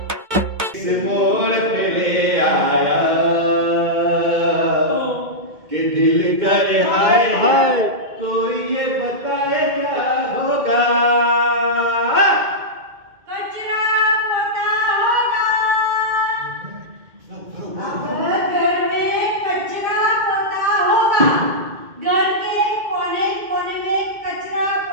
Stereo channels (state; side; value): late; left; 2.2 ms